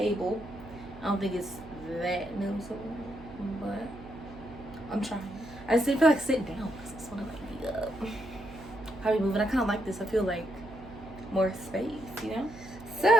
I don't think it's that noticeable, but I'm trying. I just didn't feel like sitting down because I just want to like be up. How we moving? I kind of like this. I feel like more space, you know?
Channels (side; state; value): right; noise; hum, 17 dB below the sound